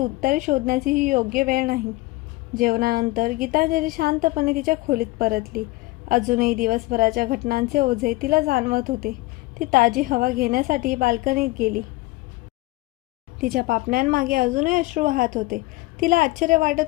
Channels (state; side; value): quieter; right; 20.9 dB